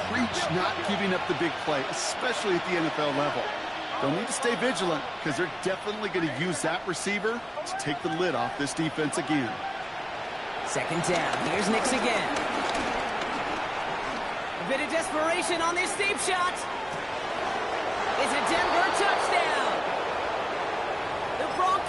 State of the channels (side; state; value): both; identical; correlation 1.00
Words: preach not giving up the big play, especially at the NFL level. They'll need to stay vigilant because they're definitely going to use that receiver to take the lid off this defense again. 2nd down. Here's Nix again. A bit of desperation on this deep shot. It's a Denver touchdown. The